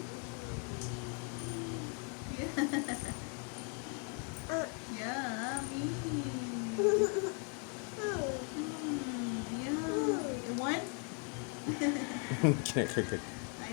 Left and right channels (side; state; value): right; quieter; 39.2 dB